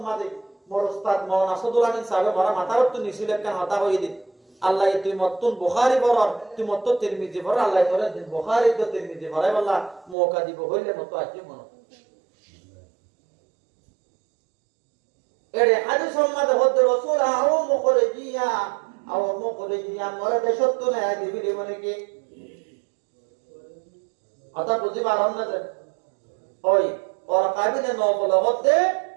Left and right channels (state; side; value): drops out; left; at 10.2 s